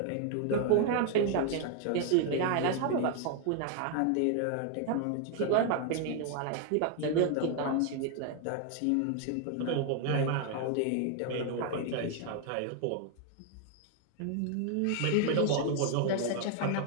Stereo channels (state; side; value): different; both; correlation 0.00